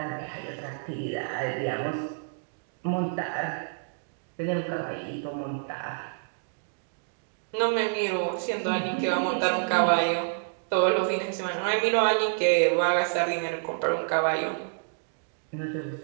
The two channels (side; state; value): left; silent; digital silence